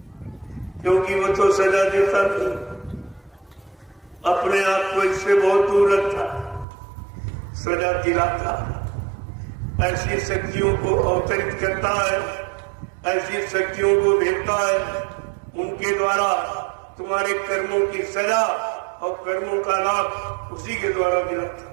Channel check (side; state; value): left; drops out; at 6.7 s